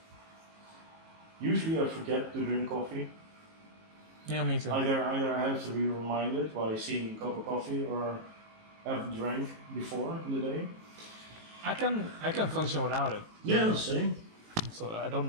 Usually I forget to drink coffee. Yeah, me too. Either I have to be reminded by seeing a cup of coffee or have drank before in the day. I can function without it. Yeah, the same. So I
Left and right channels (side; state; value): left; late; 19 ms